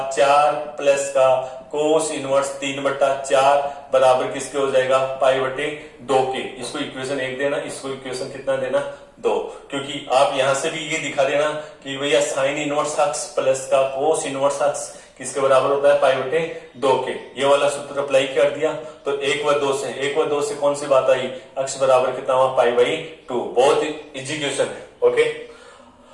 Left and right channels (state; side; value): identical; both; correlation 1.00